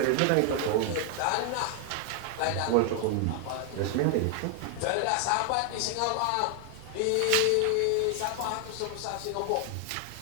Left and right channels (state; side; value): different; both; correlation 0.00